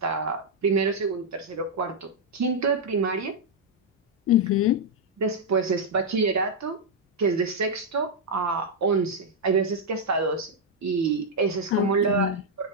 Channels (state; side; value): normal; both; correlation -0.03